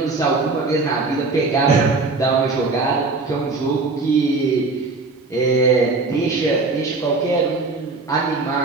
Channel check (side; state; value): left; quieter; 3.7 dB